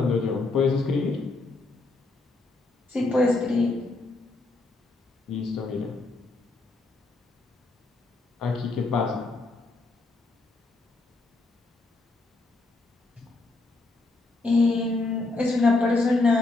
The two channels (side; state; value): right; quieter; 3.3 dB